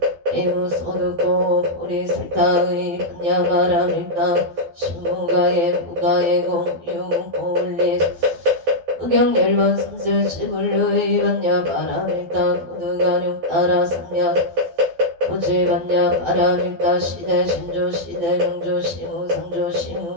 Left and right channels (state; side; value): late; left; 12 ms